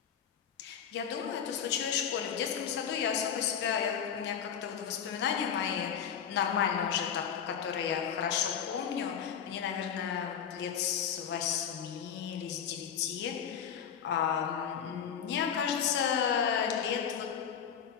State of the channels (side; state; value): right; quieter; 8.0 dB